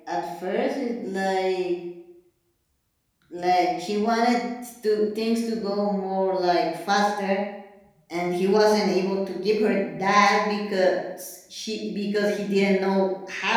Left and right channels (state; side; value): identical; both; correlation 1.00